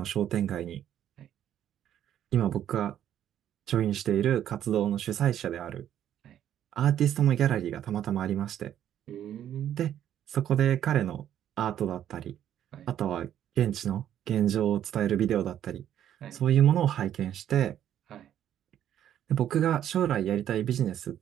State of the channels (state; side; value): quieter; left; 10.7 dB